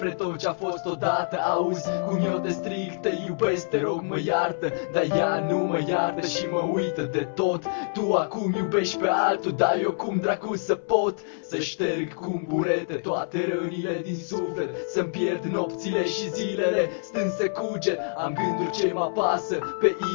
tot ce-a fost odată. Auzi cum eu te strig, te iubesc, te rog mă iartă. Dar ea nu mă iartă și mă uită de tot. Tu acum iubești pe altul, dar eu cum dracu să pot să șterg cu burete toate rănile din suflet. Să-mi pierd nopțile și zilele stând să cuget. Am gânduri ce mă apasă pe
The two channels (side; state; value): right; silent; 61 dB below the other